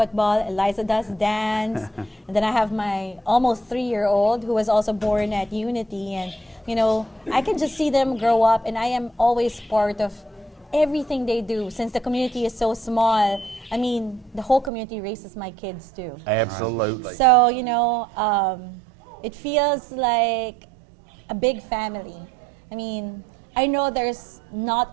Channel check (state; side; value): drops out; left; at 14.7 s